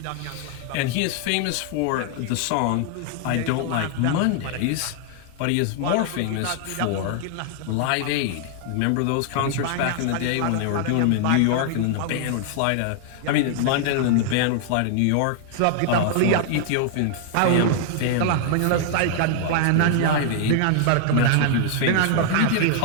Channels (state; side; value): different; both; correlation 0.00